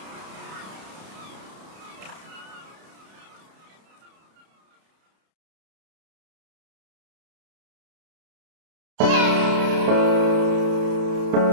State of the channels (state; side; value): late; left; 31 ms